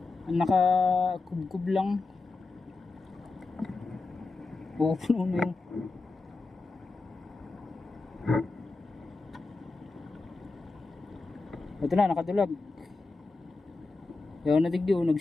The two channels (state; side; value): quieter; right; 3.6 dB